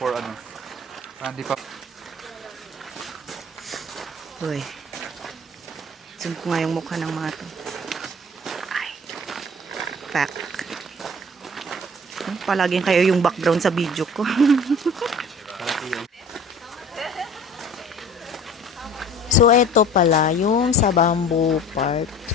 ano. Hindi pa. Uy. Zoom ko nga yung mukha ng mga to. Pack. Palaging kayo yung background sa video ko. So, eto pala, yung sa bamboo part.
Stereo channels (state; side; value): normal; both; correlation 0.45